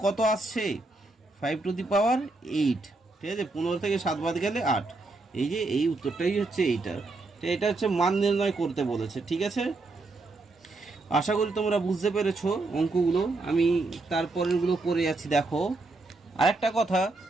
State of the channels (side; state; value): left; quieter; 3.3 dB